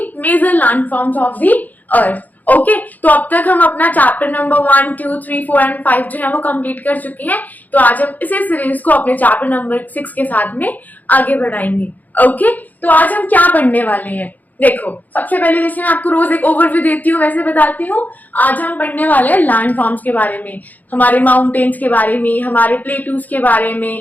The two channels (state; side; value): late; right; 0.082 ms